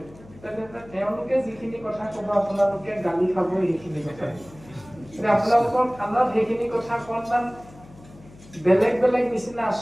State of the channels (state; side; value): noise; left; hum, 21 dB below the sound